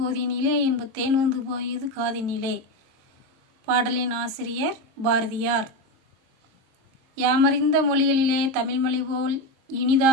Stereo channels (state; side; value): late; left; 23 ms